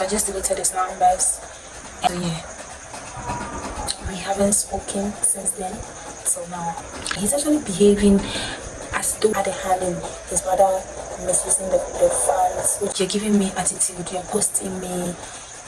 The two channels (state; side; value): identical; both; correlation 1.00